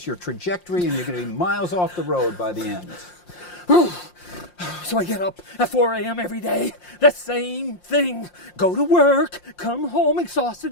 your trajectory, and you're going to be miles off the road by the end. So I get up at 4 a.m. every day. The same thing. Go to work, come home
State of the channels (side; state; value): right; late; 5.7 ms